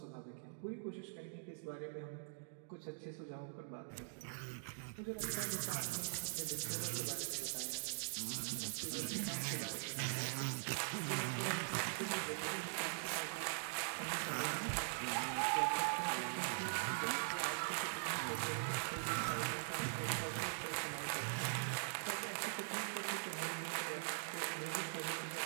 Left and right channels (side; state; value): left; silent; digital silence